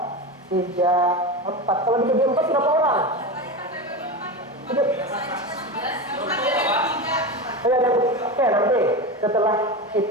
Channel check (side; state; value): both; normal; correlation 0.22